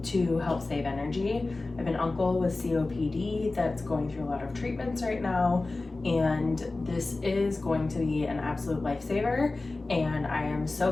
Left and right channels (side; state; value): right; quieter; 3.3 dB